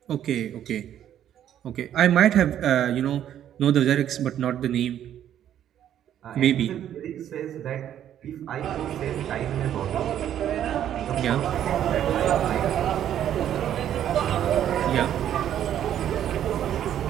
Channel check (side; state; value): left; quieter; 10.6 dB